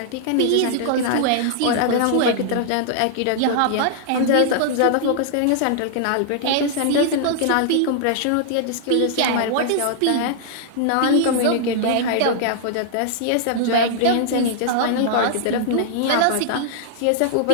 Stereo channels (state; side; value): different; both; correlation -0.01